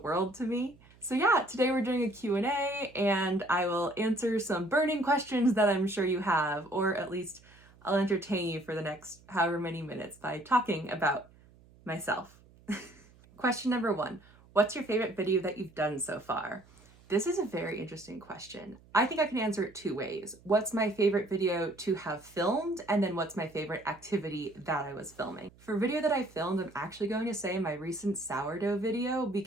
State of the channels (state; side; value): noise; right; hum, 26 dB below the sound